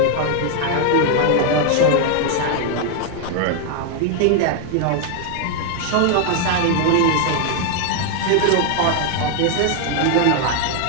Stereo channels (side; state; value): both; different; correlation 0.00